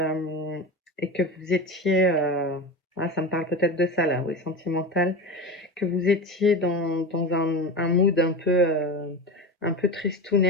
et que vous étiez... ça me parle peut-être de ça, là, oui, sentimental. Que vous étiez dans un mood un peu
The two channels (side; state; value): both; normal; correlation 0.25